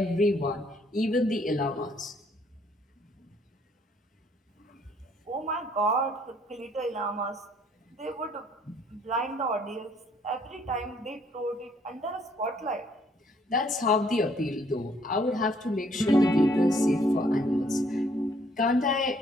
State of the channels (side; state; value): both; normal; correlation 0.65